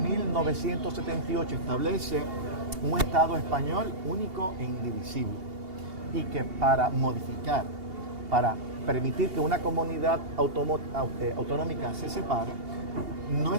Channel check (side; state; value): left; late; 2.8 ms